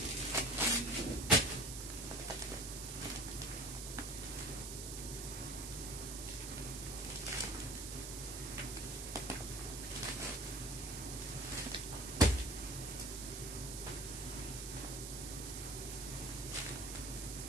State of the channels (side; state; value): right; noise; hiss, 6 dB below the sound